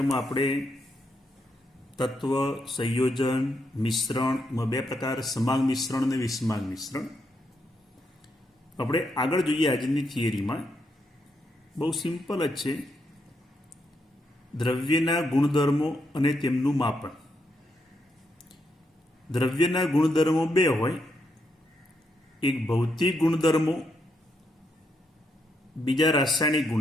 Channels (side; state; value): both; normal; correlation 0.79